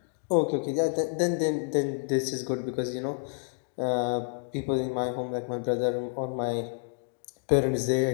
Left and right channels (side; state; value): right; silent; digital silence